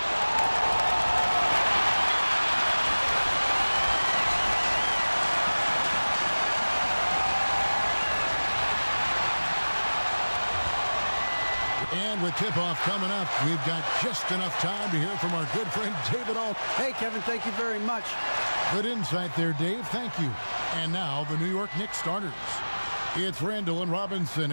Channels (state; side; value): inverted; both; correlation -1.00